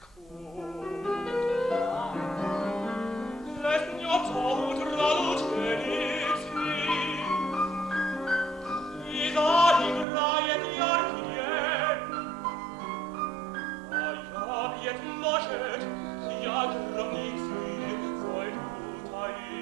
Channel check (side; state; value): left; drops out; at 10.1 s